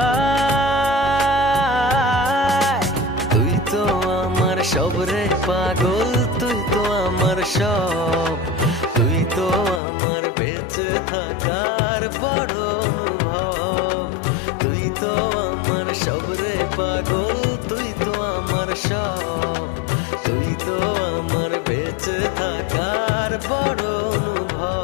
তুই তো আমার সব রে পাগল তুই তো আমার সব তুই তো আমার বেঁচে থাকার বড় অনুভব তুই তো আমার সব রে পাগল তুই তো আমার সব তুই তো আমার বেঁচে থাকার বড়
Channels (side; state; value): right; drops out; at 9.8 s